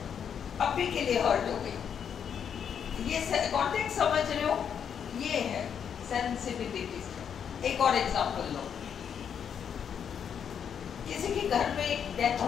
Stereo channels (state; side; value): quieter; right; 7.8 dB